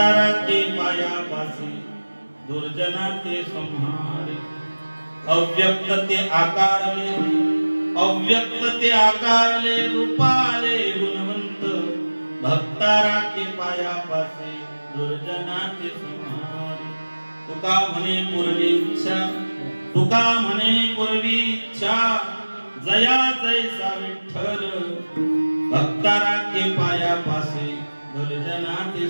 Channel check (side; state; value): both; inverted; correlation -1.00